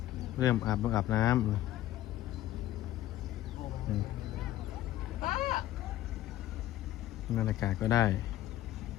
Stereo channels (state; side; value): quieter; right; 13.8 dB